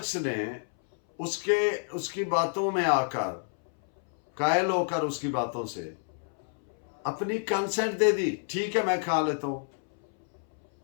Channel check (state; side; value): silent; right; 59 dB below the other